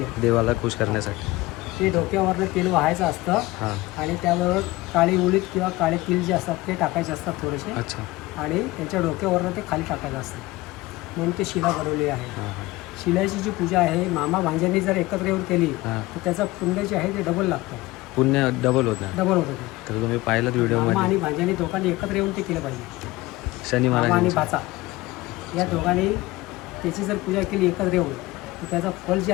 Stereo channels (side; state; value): right; quieter; 19.7 dB